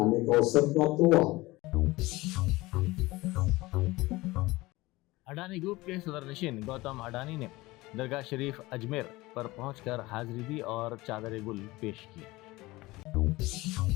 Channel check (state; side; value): quieter; right; 20.5 dB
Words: का अवसर प्राप्त हुआ। अडानी ग्रुप के सदरनशीन गौतम अडानी ने दरगाह शरीफ अजमेर पर पहुंचकर हाजिरी दी और चादर गुल पेश की।